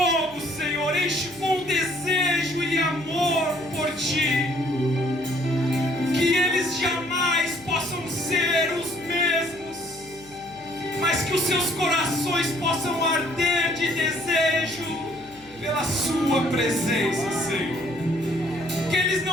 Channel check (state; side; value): noise; left; hum, 25 dB below the sound